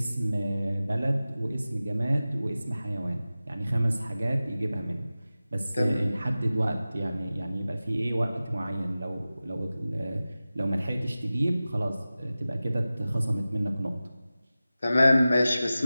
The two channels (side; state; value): both; inverted; correlation -0.96